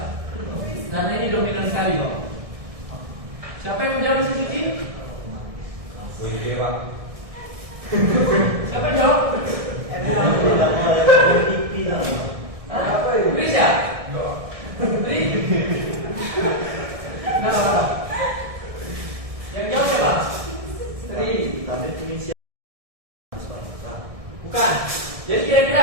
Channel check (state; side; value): late; left; 1.6 ms